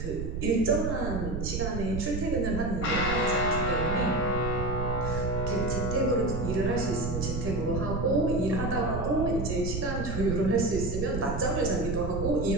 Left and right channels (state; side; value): noise; right; rumble, 4 dB below the sound